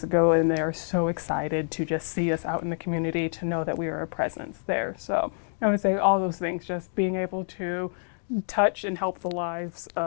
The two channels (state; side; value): silent; right; digital silence